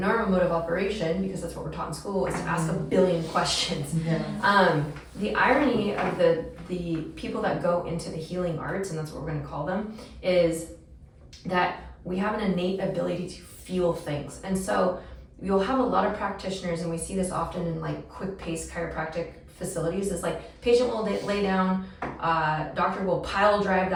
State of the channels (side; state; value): both; identical; correlation 1.00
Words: mode of operation, because that's what we're taught in school, is to ask a billion questions. The irony of the people that go into the healing arts, and that's what we're going to call them, is that we have an innate ability to feel things. And so you'll have a lot of practitioners, and we see this often in like quick pace chiropractic facilities, is like patient will lay down, doctor will pile drive